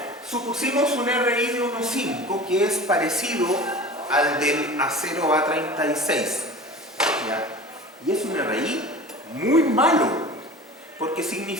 supusimos un RI de 1,5 que es parecido al del acero A36. ¿Ya? Y es un RI muy malo, porque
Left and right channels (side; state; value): both; normal; correlation 0.38